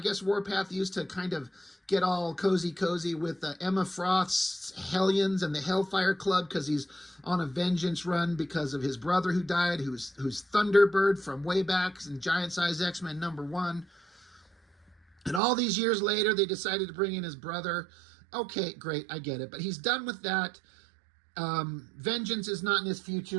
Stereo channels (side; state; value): left; drops out; at 15.4 s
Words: Warpath used to kind of get all cozy with Emma Froth's Hellions and the Hellfire Club because he's on a vengeance run because of his brother who died, who's Thunderbird from way back in Giant Size X-Men #1. And all these years later, they decided to bring in his brother. Okay, great, I get it. But he's done with that. Vengeance is not in his future